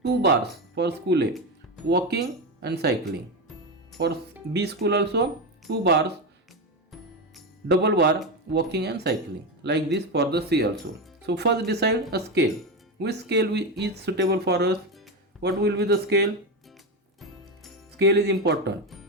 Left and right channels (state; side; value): normal; both; correlation 0.14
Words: 2 bars for school A, walking and cycling. For B school also 2 bars, double bar, walking and cycling, like this for the C also. So first decide a scale. Which scale is suitable for us? What will be the scale? Scale is important